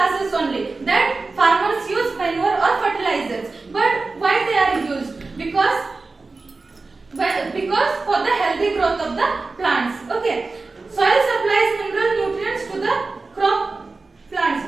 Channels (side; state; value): left; quieter; 3.8 dB